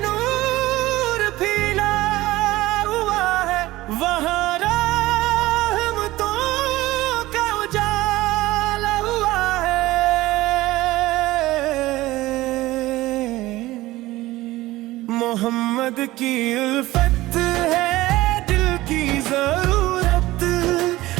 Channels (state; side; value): quieter; left; 17.8 dB